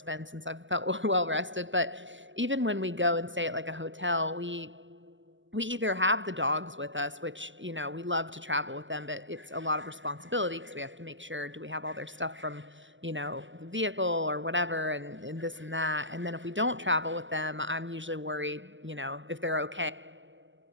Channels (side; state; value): left; late; 0.55 ms